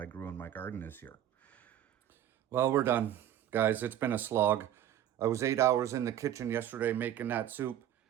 grew in my garden this year. Well, we're done, guys. It's been a slog. I was 8 hours in the kitchen yesterday making that soup.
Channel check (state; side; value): quieter; left; 11.3 dB